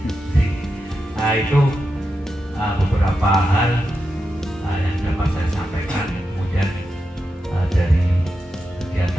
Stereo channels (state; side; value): normal; both; correlation 0.88